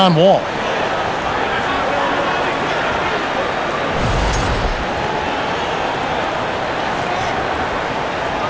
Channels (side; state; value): both; identical; correlation 1.00